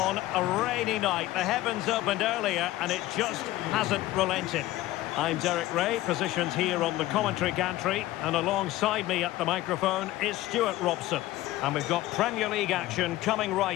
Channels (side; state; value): right; quieter; 16.3 dB